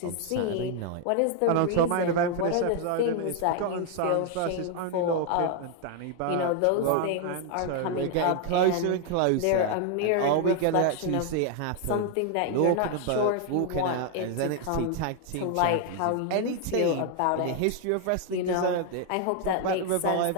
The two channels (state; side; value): different; both; correlation 0.00